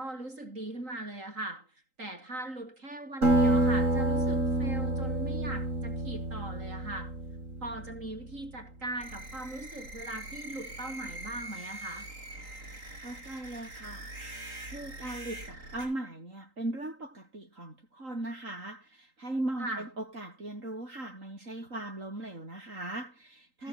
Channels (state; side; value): late; left; 3.8 ms